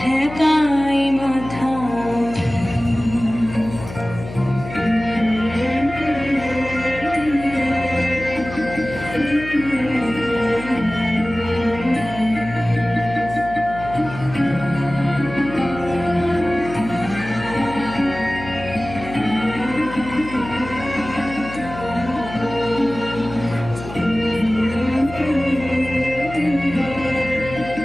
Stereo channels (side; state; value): left; noise; hum, 12 dB below the sound